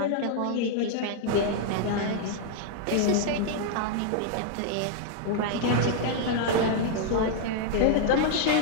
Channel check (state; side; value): different; both; correlation 0.00